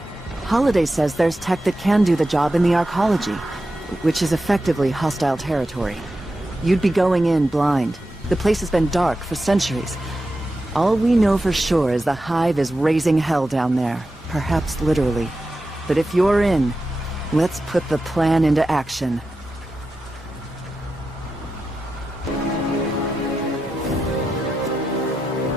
Holiday says there's tech that can do the job in the Arcology, which is effectively hostile territory. You'd be going in blind. The place has been dark for centuries. All we know for sure is the Hive is raising hell down there, perhaps literally. But if you're in, let's put the plan into action.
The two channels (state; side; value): normal; both; correlation 0.90